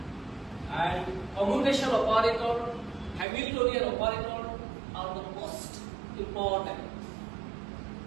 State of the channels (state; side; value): drops out; left; at 3.2 s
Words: and commutation operator, Hamiltonian operator are the most important.